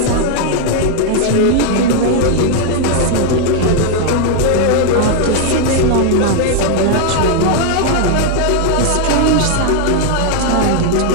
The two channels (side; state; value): both; different; correlation 0.00